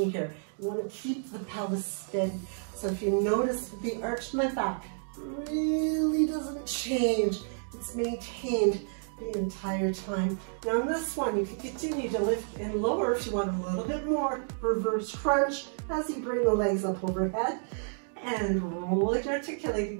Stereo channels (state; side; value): silent; left; digital silence